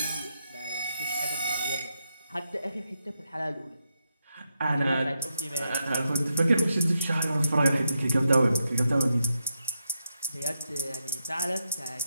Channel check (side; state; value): both; inverted; correlation -0.84